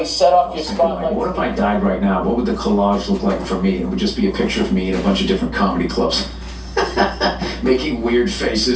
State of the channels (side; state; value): both; identical; correlation 1.00